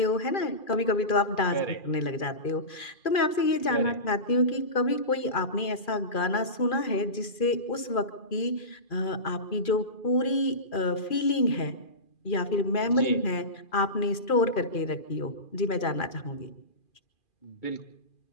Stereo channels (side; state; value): right; late; 2.4 ms